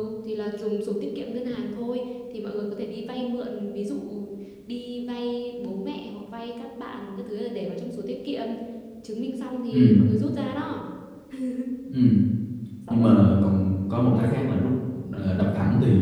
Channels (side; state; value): both; identical; correlation 1.00